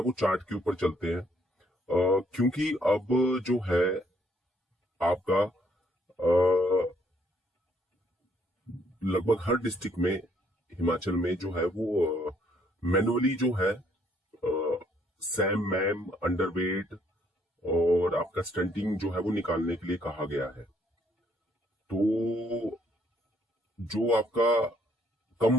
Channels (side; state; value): both; normal; correlation 0.68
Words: चार्ट के ऊपर चलते हैं, क्योंकि अब जो है आपका लगभग हर डिस्ट्रिक्ट में हिमाचल में जो है वो मैनुअली जो है सैम मैम अंडरवेट और आपका स्टंटिंग जो है वो निकालने के लिए कहा गया है। तो जो आपका कम